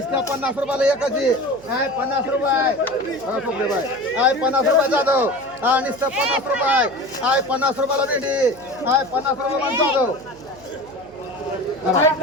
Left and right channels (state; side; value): noise; right; hum, 24 dB below the sound